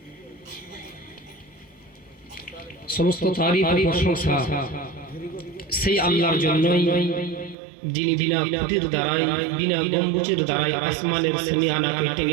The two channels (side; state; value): left; drops out; at 7.6 s